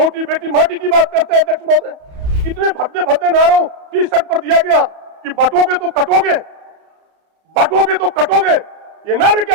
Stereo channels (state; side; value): late; left; 33 ms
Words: बेटी माटी की बात करते हैं। अध्यक्ष महोदय, इतने भद्दे भद्दे नारों टी शर्ट पर दिया गया कि बटोगे तो कटोगे, बटोगे तो कटोगे। ये नारे